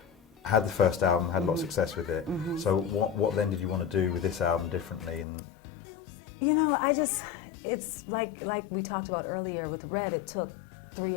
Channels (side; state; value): right; drops out; at 5.2 s